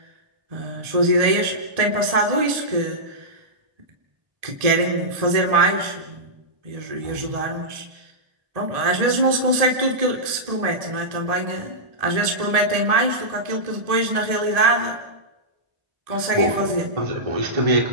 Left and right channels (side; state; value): left; late; 1.7 ms